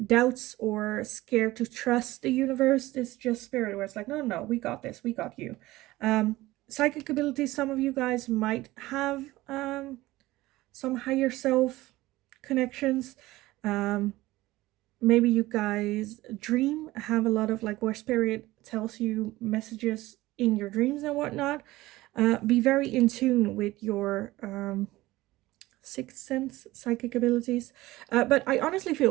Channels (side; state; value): left; quieter; 18.1 dB